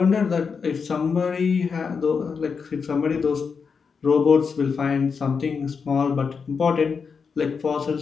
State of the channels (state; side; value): quieter; right; 5.7 dB